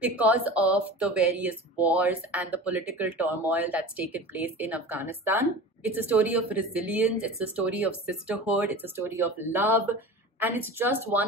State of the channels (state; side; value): normal; both; correlation 0.35